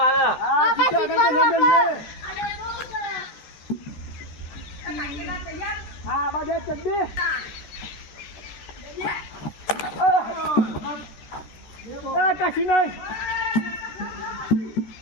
હા બધે ચડ્ડી કશી નહીં.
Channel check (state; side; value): late; right; 13 ms